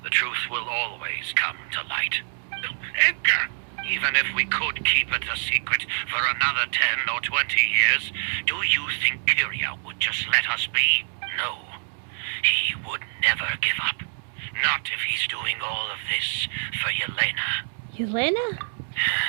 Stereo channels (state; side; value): silent; left; digital silence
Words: the truth will always come to light. Edgar! Even if we could keep it a secret for another 10 or 20 years, do you think Kyria would just let us be? No. He would never give up. Not if he's doing all of this for Yelena. Yelena?